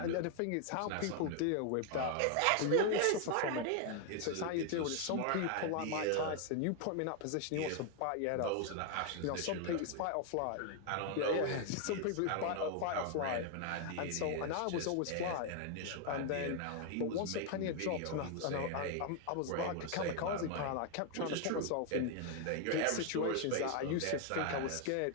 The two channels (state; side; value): different; both; correlation 0.01